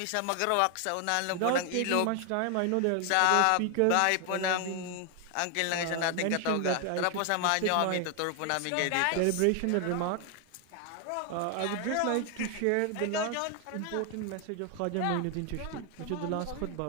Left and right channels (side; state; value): both; different; correlation 0.00